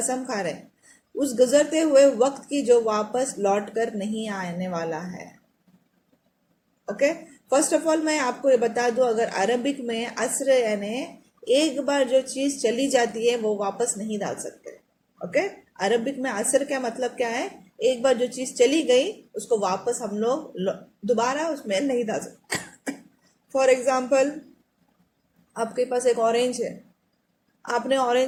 کھا رہے، اس گزرتے ہوئے وقت کی جو واپس لوٹ کر نہیں آنے والا ہے۔ اوکے، فرسٹ آف آل میں آپ کو یہ بتا دوں، اگر عربک میں عصر یعنی ایک بار جو چیز چلی جاتی ہے وہ واپس نہیں ڈال سکتے۔ اوکے، عربک میں عصر کا مطلب کیا ہے؟ ایک بار جو چیز چلی گئی اس کو واپس ہم لوگ دوبارہ اس میں نہیں ڈال سکتے۔ فار ایگزامپل، آپ کے پاس ایک اورنج ہے، آپ نے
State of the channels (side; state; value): both; identical; correlation 1.00